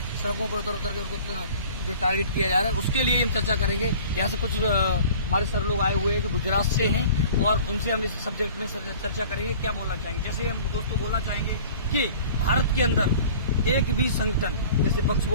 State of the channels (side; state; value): both; inverted; correlation -0.45